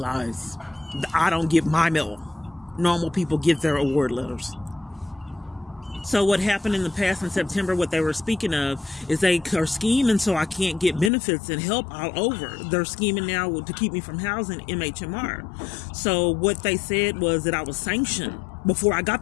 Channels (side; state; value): right; drops out; at 11.1 s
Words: I don't get my mill. Normal people get their award letters. So what happened in the past in September, what they were speaking of, is they are scheming so I can't get benefits and help all over. They're scheming now to keep me from housing MHMR. So what they said was that I was sanctioned before I got